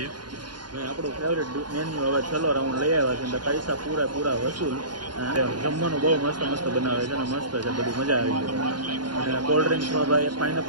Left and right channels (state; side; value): late; left; 0.71 ms